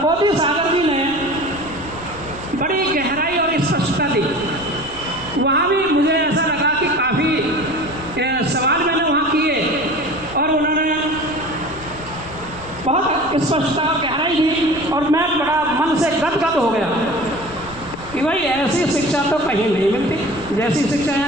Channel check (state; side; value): noise; left; rumble, 17 dB below the sound